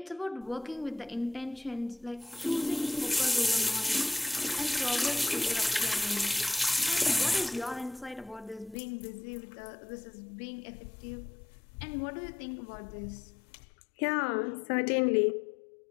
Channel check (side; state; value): right; drops out; at 8.8 s